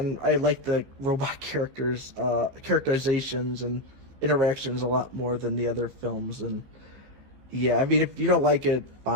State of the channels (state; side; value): late; left; 15 ms